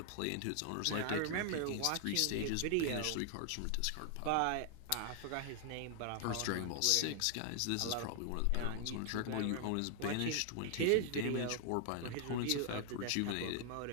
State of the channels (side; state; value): both; different; correlation 0.00